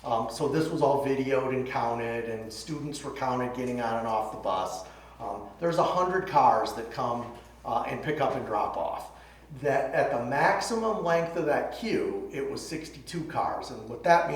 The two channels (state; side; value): identical; both; correlation 1.00